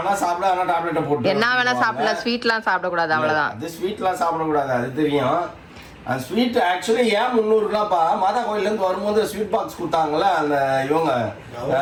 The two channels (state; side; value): identical; both; correlation 1.00